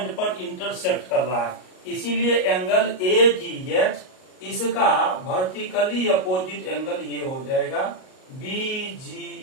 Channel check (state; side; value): late; right; 38 ms